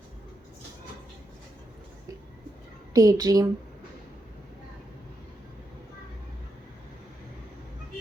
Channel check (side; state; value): both; normal; correlation 0.83